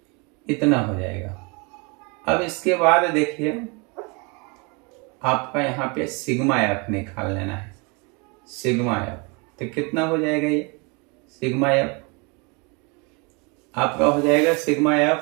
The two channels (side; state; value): left; quieter; 30.9 dB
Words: इतना हो जाएगा। अब इसके बाद देखिए आपका यहाँ पे सिग्मा एफ निकाल लेना है। सिग्मा एफ तो कितना हो जाएगा, ये सिग्मा एफ आपका हो जाएगा, सिग्मा